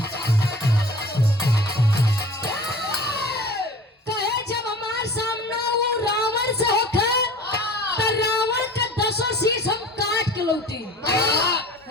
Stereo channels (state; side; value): normal; both; correlation 0.42